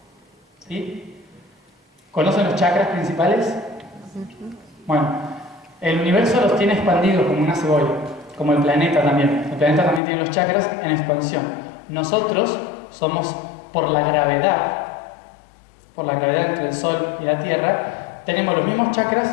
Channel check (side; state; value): right; drops out; at 10.0 s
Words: ¿Sí? ¿Conocen los chakras principales? Bueno, el universo los tiene expandidos como una cebolla, como el planeta también. El planeta también tiene los chakras en expansión. Nosotros somos, por la gravedad entre el Sol y la Tierra, tenemos los mismos